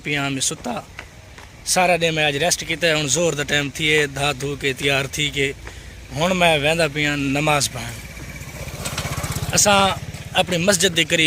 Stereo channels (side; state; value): both; identical; correlation 1.00